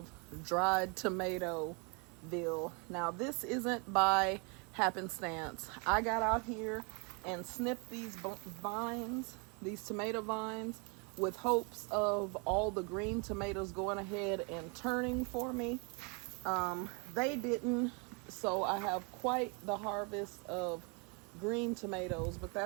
dried Tomatoville. Now, this isn't by happenstance. I got out here and snipped these vines, these tomato vines, with hopes of all the green tomatoes going ahead and turning for me. They didn't, so I have quite the harvest of green tomatoes, but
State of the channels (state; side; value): quieter; left; 33.8 dB